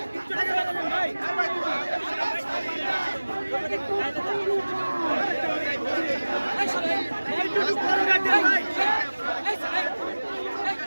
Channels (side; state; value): both; inverted; correlation -1.00